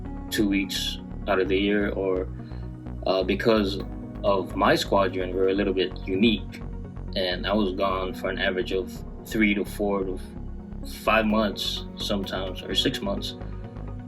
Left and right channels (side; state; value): both; identical; correlation 1.00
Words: 2 weeks out of the year, or because of my squadron, we're a little bit unique, and I was gone for an average of 3 to 4 to 5 months sometimes, or 6 months